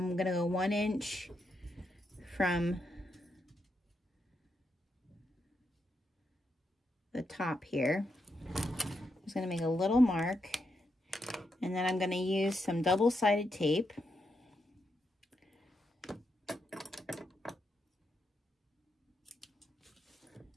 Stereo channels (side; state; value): both; normal; correlation 0.82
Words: going to go 1 inch from the top here. I'm just going to make a little mark, and then I'm going to use some double-sided tape